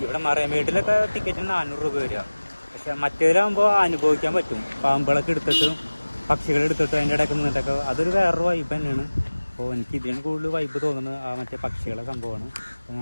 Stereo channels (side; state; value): both; inverted; correlation -1.00